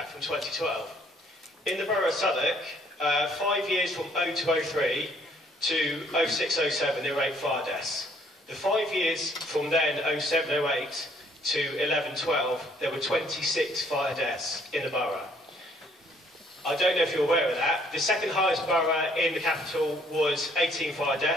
from 2012. In the Borough of Southwark, 5 years from 0203 to 0607, there were 8 fire deaths. The 5 years from then, 0708 to 1112, there were 26 fire deaths in the borough. I don't know if you're aware of that. The second highest borough in the capital was 18 fire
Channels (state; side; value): normal; both; correlation 0.64